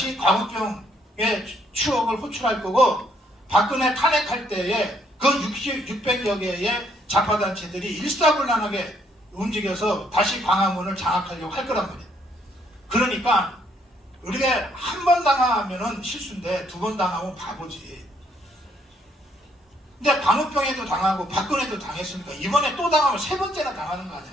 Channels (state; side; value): normal; both; correlation 0.70